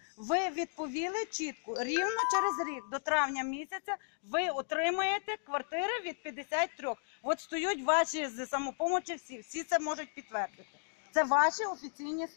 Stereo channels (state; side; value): silent; right; digital silence